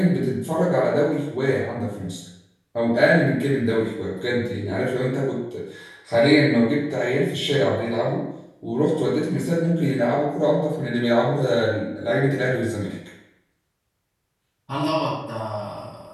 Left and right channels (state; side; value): identical; both; correlation 1.00